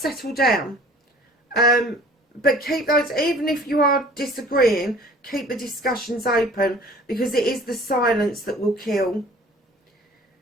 down. But keep those, even if you are disagreeing, keep the discussions open, because it is the silence that will kill.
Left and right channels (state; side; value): normal; both; correlation 0.50